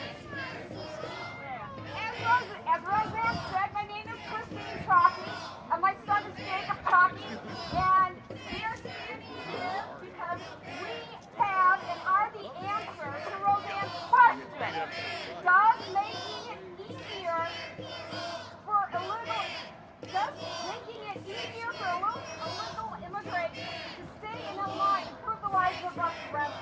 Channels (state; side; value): identical; both; correlation 1.00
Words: As Roseanne said, my name is Christine Chalky, and my son is Jacob Chalky, and we are standing here because we have and are the answer to Roseanne's question. Does making it easier for illegal immigrants to stay in Illinois and improve the lives of us